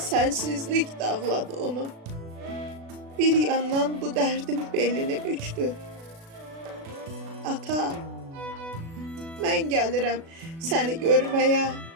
dağladı onu. Bir yandan bu dərdim belini bükdü. Ata, mən gəlirəm səni görməyə.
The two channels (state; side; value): late; left; 36 ms